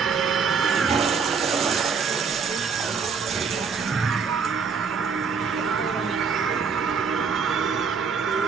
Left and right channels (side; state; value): left; quieter; 5.7 dB